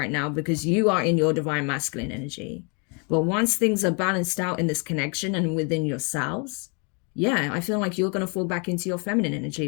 now because you are in your divine masculine energy. But once things are balanced out in this connection and within yourselves, yeah, I feel like you're going to fall back into your feminine energy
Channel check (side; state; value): right; quieter; 35.1 dB